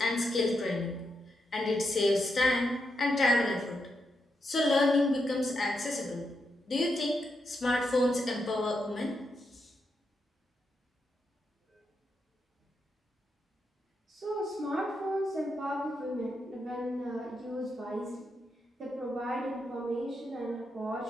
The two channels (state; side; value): normal; both; correlation 0.83